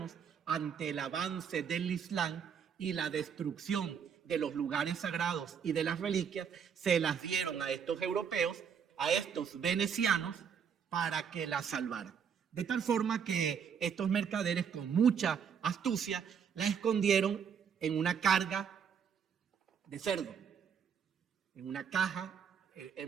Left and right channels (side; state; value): left; quieter; 7.3 dB